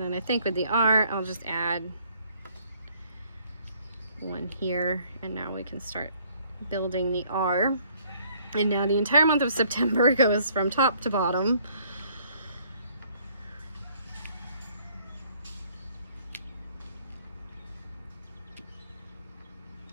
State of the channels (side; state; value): both; inverted; correlation -0.63